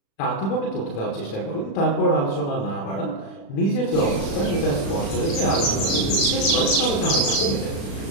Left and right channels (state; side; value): late; right; 36 ms